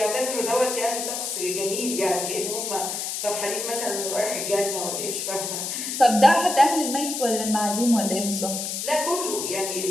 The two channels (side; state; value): left; noise; hiss, 4 dB below the sound